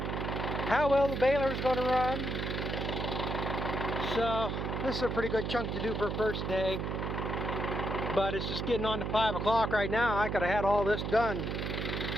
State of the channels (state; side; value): noise; right; hum, 2 dB below the sound